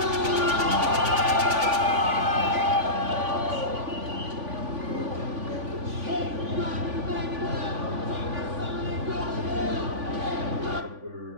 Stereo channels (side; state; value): left; late; 3.5 ms